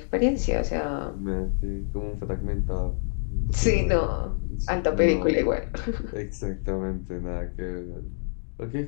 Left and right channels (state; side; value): silent; right; digital silence